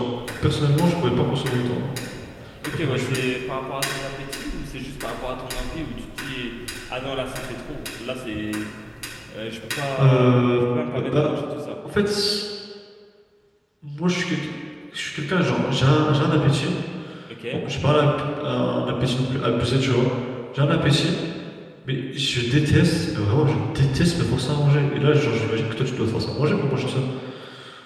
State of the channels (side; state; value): both; identical; correlation 1.00